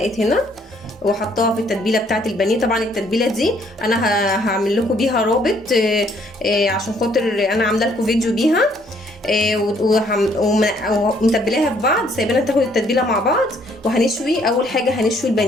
هنا وحطاها في التتبيله بتاعه البانيه. طبعا التتبيله دي انا هعمل لكم بيها رابط عشان خاطر انا عامله لكم فيديو بيها ومتبلاها في بعض، سايبينها تاخد التتبيله مع بعض. وهنشوي اول حاجه هنشوي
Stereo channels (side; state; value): both; normal; correlation 0.65